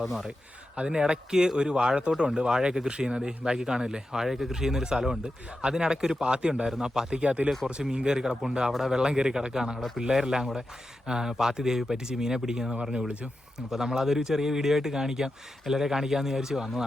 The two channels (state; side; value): normal; both; correlation 0.90